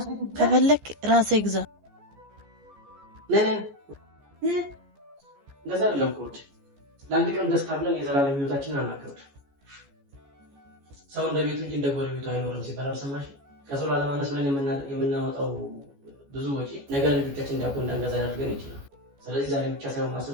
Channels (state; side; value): late; left; 14 ms